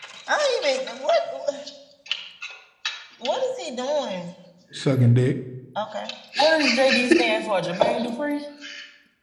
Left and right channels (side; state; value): both; identical; correlation 1.00